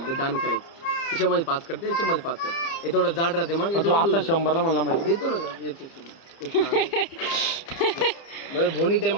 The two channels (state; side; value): late; right; 30 ms